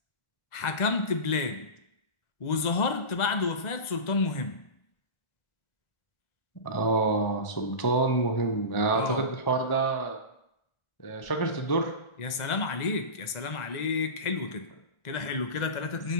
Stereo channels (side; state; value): right; late; 1.4 ms